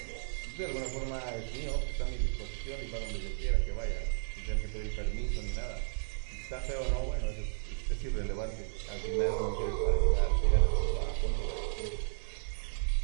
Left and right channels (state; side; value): silent; left; digital silence